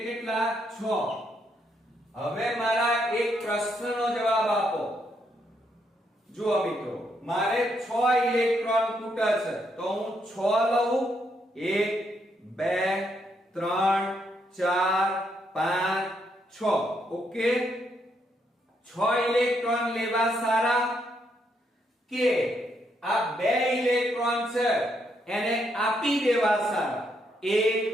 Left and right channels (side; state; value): both; normal; correlation 0.76